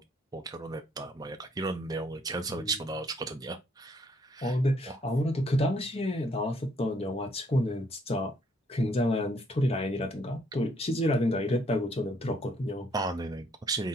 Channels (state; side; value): normal; both; correlation 0.68